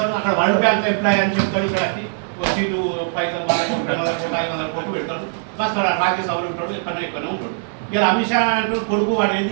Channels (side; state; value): left; silent; 62 dB below the other